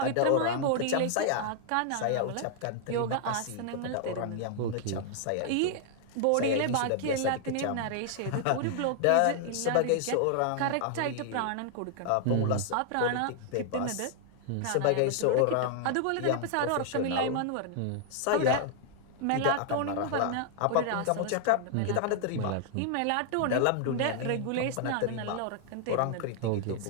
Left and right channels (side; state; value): both; different; correlation 0.00